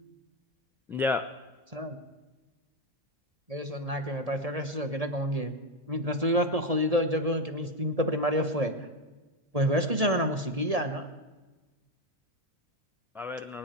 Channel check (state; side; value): late; left; 1.7 ms